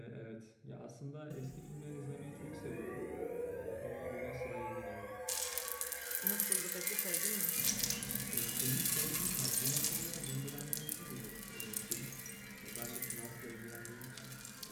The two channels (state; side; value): identical; both; correlation 1.00